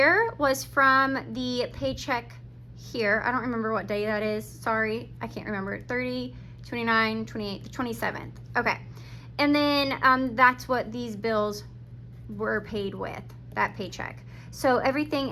was from the paycheck here. I don't remember what day that is. Sorry, I can't remember. 30, 29, 28, the 27th. Okay. And then that's what these bills were paid with, that paycheck. So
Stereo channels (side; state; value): both; identical; correlation 1.00